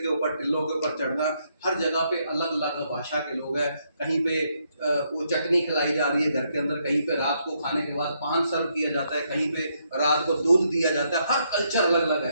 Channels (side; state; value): both; inverted; correlation -0.75